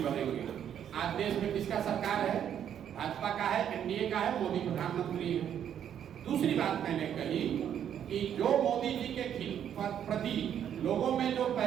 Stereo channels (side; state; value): left; quieter; 9.4 dB